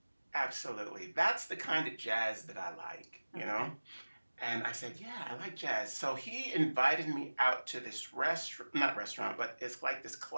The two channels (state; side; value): inverted; both; correlation -1.00